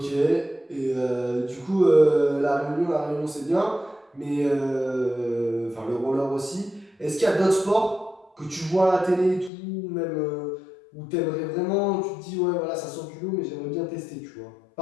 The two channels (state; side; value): drops out; right; at 9.5 s